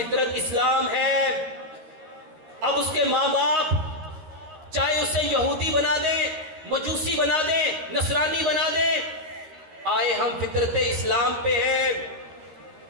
इस्लाम है। अब उसके माँ बाप चाहे उसे यहूदी बना दें, मजूसी बना दें, नसरानी बना दें, आए हम फितरत इस्लाम पे हैं।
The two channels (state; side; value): late; left; 13 ms